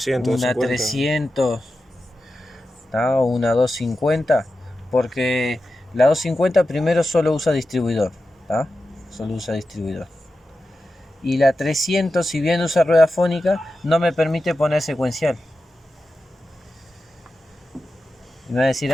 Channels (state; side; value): normal; both; correlation 0.92